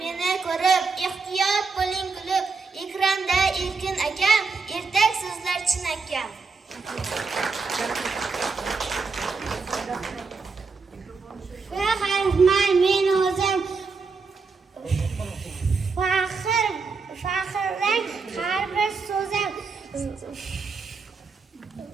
meni ko'rib, ehtiyot bo'ling kulib. Ekranda Erkin akam, ertak so'zlar chinakam. Faxrman men o'zim faxrlang har bir so'zim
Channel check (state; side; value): quieter; left; 4.6 dB